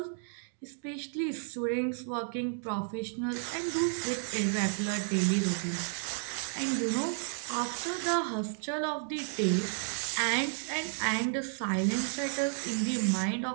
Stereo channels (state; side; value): silent; left; 56 dB below the other